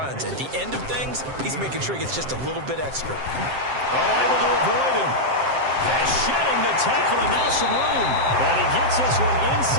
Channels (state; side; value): late; left; 7.6 ms